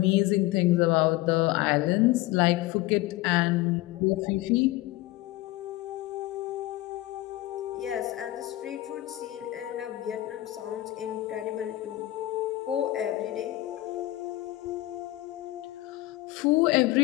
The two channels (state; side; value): quieter; right; 17.2 dB